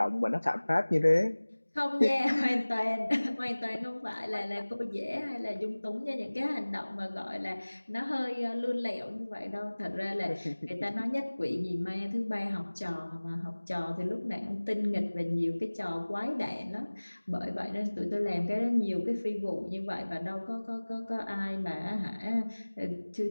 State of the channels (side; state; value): both; inverted; correlation -1.00